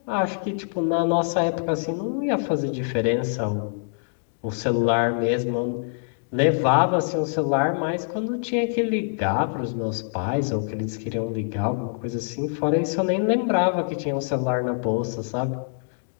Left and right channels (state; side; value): silent; right; digital silence